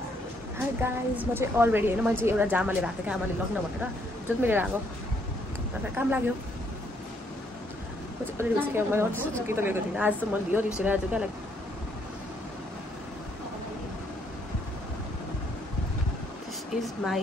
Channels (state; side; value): normal; both; correlation 0.70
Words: हाई गाइज म चाहिँ अलरेडी होइन मैले चाहिँ एउटा जामा लिएर आएको थिएँ आमाले लग्न भनेर जुन मैले लिएर आएको अन्त काम लाग्यो म चाहिँ अलरेडी उसको मैले अरू कि त लिएको थिइनँ आज त मैले लियो रिसेर आज क्या like this is